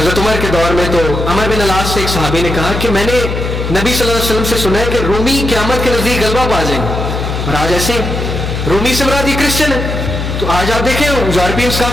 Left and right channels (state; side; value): noise; left; hum, 3 dB below the sound